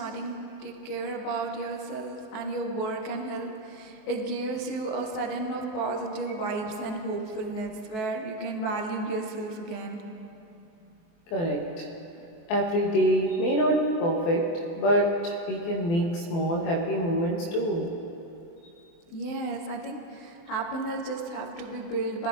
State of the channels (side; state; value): right; late; 24 ms